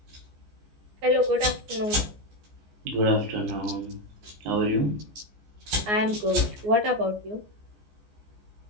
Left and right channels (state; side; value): late; left; 14 ms